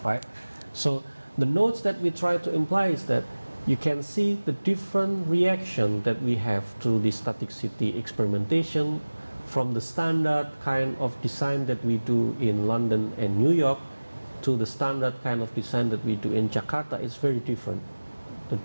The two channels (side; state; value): both; inverted; correlation -1.00